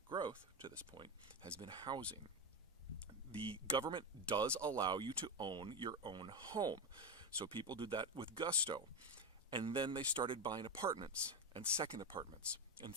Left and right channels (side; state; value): both; normal; correlation 0.13